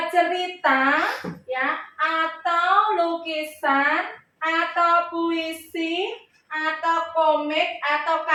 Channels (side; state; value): both; identical; correlation 1.00